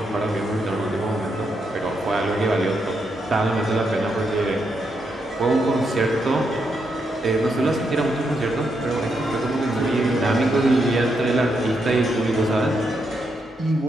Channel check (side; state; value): both; normal; correlation 0.81